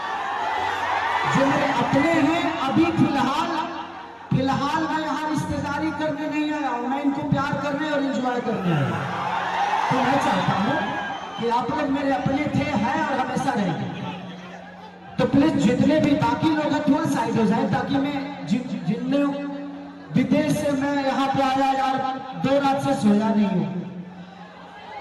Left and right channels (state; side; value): identical; both; correlation 1.00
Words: जो मेरे अपने हैं, अभी फिलहाल मैं यहाँ रिश्तेदारी करने नहीं आया हूँ, मैं इनको प्यार करने और एंजॉय करने आया हूँ। तो मैं चाहता हूँ कि आप लोग मेरे अपने थे, हैं और हमेशा रहेंगे। तो प्लीज जितने भी बाकी लोग हैं थोड़ा साइड हो जाए, ताकि मैं जितने विदेश से मैं यहाँ पे आया यार, 2 रात से सोया नहीं हूँ।